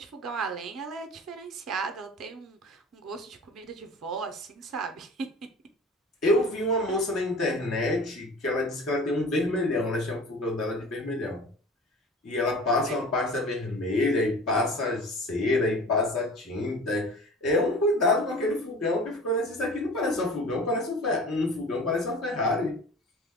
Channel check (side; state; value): both; normal; correlation 0.40